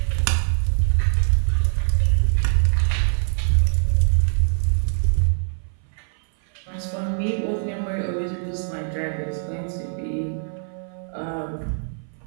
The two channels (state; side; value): silent; left; 59 dB below the other